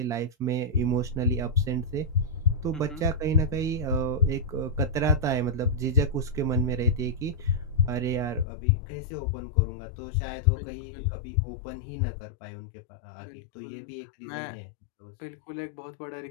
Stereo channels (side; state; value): right; drops out; at 8.5 s